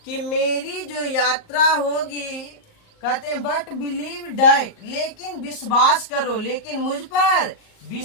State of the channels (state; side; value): late; right; 38 ms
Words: कि मेरी जो यात्रा होगी, कहते हैं बट बिलीव डैट, लेकिन विश्वास करो, लेकिन मुझ पर